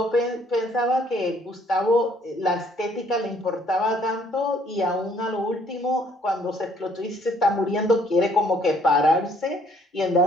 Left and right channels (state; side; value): normal; both; correlation 0.63